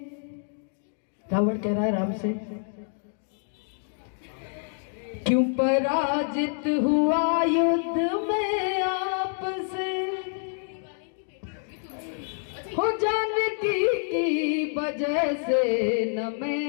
रावण कह रहा है राम से, क्यों पराजित हुआ युद्ध में आपसे। हो जानकी की वजह से न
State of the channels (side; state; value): right; silent; 60 dB below the other